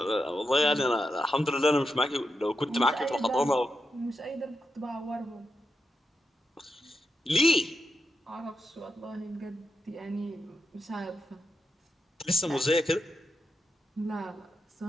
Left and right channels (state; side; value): normal; both; correlation 0.86